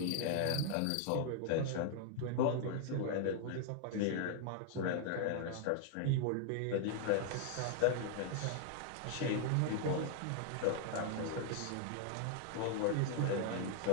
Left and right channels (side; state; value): both; different; correlation 0.00